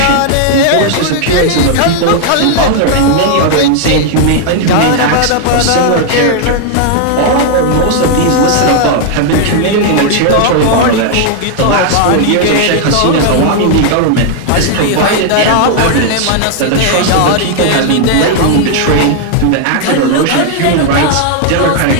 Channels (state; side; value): different; both; correlation 0.00